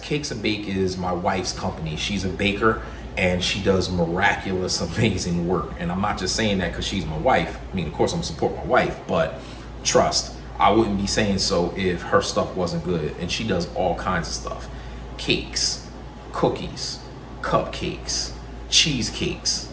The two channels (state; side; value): identical; both; correlation 1.00